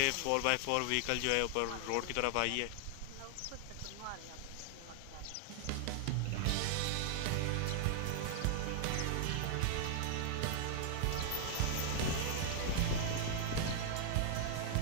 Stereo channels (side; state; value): both; different; correlation 0.00